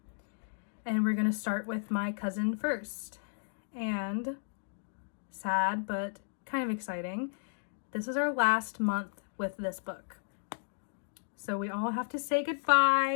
and we're going to start with my cousin first. And sad but kind of exciting, this is our last month with this book, so we all have to say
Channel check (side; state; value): right; silent; digital silence